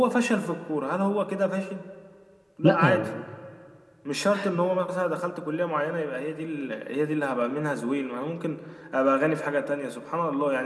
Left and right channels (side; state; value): both; identical; correlation 1.00